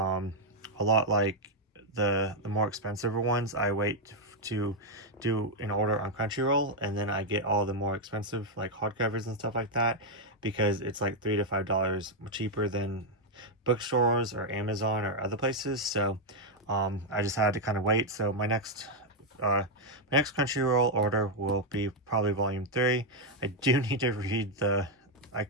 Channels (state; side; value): normal; both; correlation 0.00